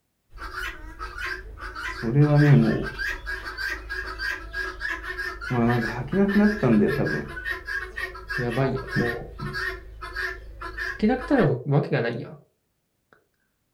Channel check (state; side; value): identical; both; correlation 1.00